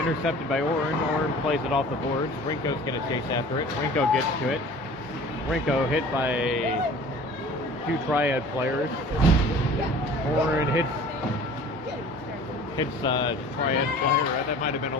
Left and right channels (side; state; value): both; normal; correlation 0.45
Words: by Oren. Oren plays it off the boards. Rinko's going to chase after it. Rinko gets to it. Rinko hit by 2 Triad players. Oren hits Triad player. That might have been a